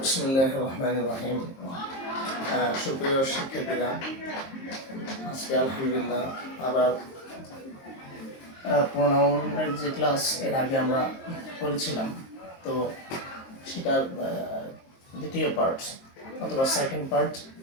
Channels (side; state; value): right; late; 23 ms